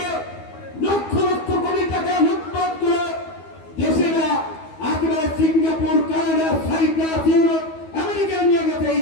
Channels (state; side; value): late; right; 12 ms